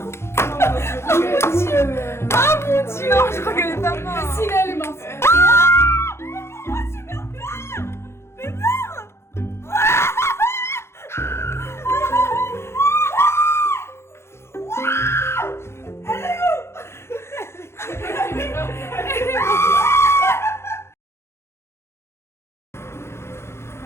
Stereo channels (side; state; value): right; late; 0.12 ms